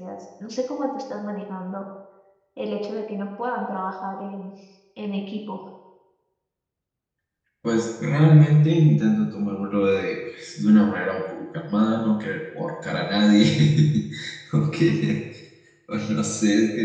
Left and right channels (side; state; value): both; identical; correlation 1.00